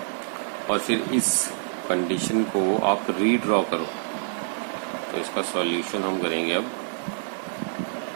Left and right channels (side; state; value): left; silent; digital silence